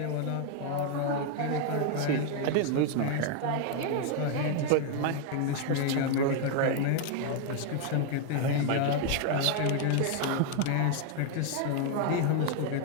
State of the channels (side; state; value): both; different; correlation 0.01